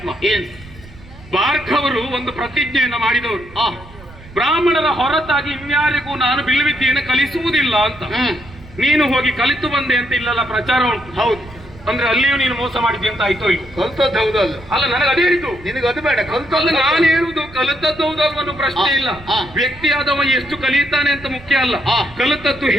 ಭಾರ್ಗವರು ಒಂದು ಪ್ರತಿಜ್ಞೆಯನ್ನು ಮಾಡಿದವರು, ಬ್ರಾಹ್ಮಣರ ಹೊರತಾಗಿ ಇನ್ಯಾರಿಗೂ ನಾನು ಬಿಲ್ವಿದ್ಯೆಯನ್ನು ಕಲಿಸುವುದಿಲ್ಲ ಅಂತ. ನೀನು ಹೋಗಿ ಕಲಿತು ಬಂದೆ ಅಂತ ಇಲ್ಲೆಲ್ಲ ಪ್ರಚಾರ ಉಂಟು. ಹೌದು, ಅಂದ್ರೆ ಅಲ್ಲಿಯೂ ನೀನು ಮೋಸ ಮಾಡಿದ್ದೆ ಅಂತ ಆಯ್ತು. ಇಲ್ಲಿ ಕಲ್ತದ್ದು ಹೌದಲ್ಲ? ಅಲ್ಲ, ನನಗೆ ಅದೇ ಹೇಳಿದ್ದು. ನಿನಗೆ ಅದು ಬೇಡ, ಕಲ್ತದ್ದು ನಾನು ಹೇಳುದು. ಕಲಿತದ್ದು ಹೌದಲ್ವನ್ನೋ ಪ್ರಶ್ನೆ ಇಲ್ಲ. ವ್ಯಕ್ತಿಯಾದವ ಎಷ್ಟು ಕಲಿತಾನೆ ಅಂತ ಮುಖ್ಯ ಅಲ್ಲ, ಕಲಿತದ್ದು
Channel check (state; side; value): noise; right; rumble, 20 dB below the sound